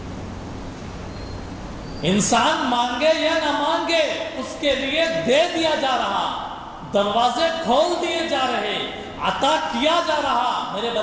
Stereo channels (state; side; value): identical; both; correlation 1.00